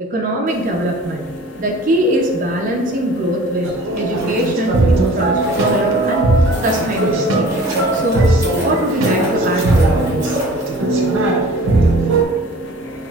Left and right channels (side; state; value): both; normal; correlation 0.46